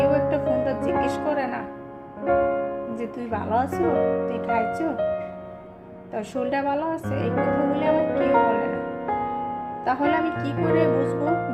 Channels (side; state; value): both; identical; correlation 1.00